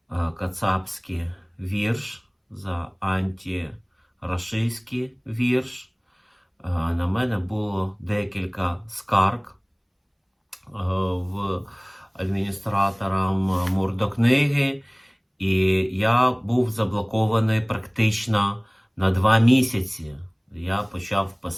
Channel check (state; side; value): identical; both; correlation 1.00